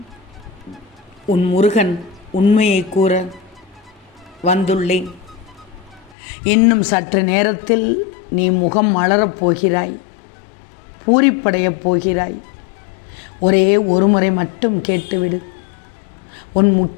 உன் முருகன் உண்மையை கூற வந்துள்ளேன். இன்னும் சற்று நேரத்தில் நீ முகம் மலரப் போகிறாய், பூரிப்படையப் போகிறாய். ஒரே ஒரு முறை மட்டும் கேட்டுவிடு, உன்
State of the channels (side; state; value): right; drops out; at 6.2 s